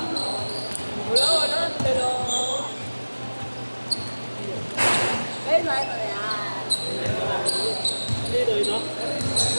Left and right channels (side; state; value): both; inverted; correlation -1.00